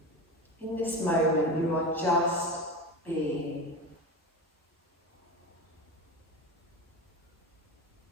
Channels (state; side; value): normal; both; correlation 0.24